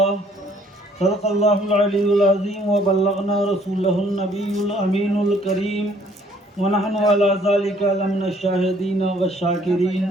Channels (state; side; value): normal; both; correlation 0.61